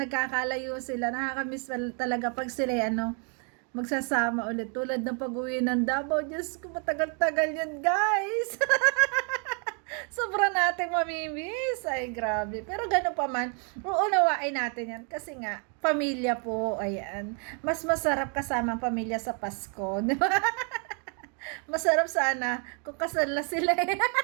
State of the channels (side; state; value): left; quieter; 39.6 dB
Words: sila, nakakamiss talaga pag sila, ano, magsasama ulit. Tulad ng pag-uwi ng Davao. Diyos ko, matagal-tagal yun, guys. Sobra nating mamimiss. Ay, grabe. Pero gano'n pa man, uunawain natin yan. Kasi nga, pamilya po, ayan. Mas masarap kasama ang pamilya sa Pasko. Di ba? Masarap sana kung kasal na sila.